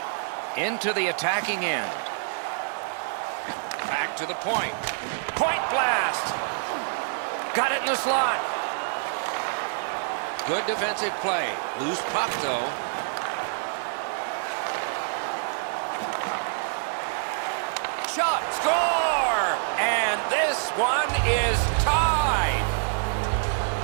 Into the attacking end. Back to the point. Point blast! Got it in the slot. Good defensive play. Loose puck, though. Shot! Score! And this one is tied.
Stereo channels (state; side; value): silent; left; 60 dB below the other